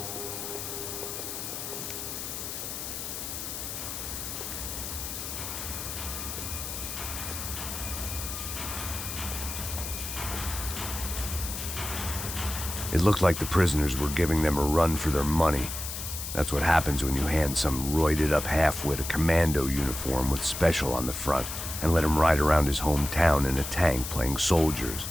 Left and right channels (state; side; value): noise; left; hiss, 6 dB below the sound